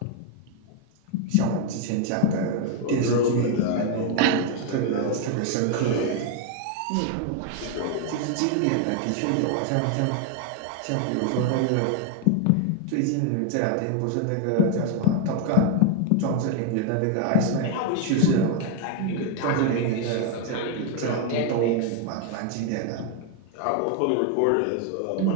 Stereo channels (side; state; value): both; different; correlation 0.01